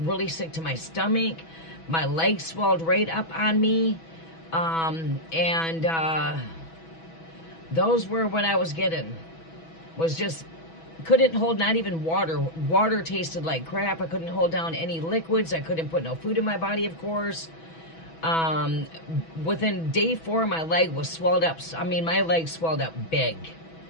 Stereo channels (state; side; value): late; right; 6.1 ms